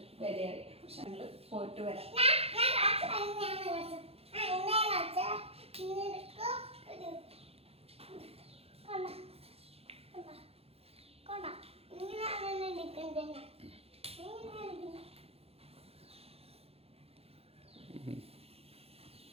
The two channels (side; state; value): left; late; 0.29 ms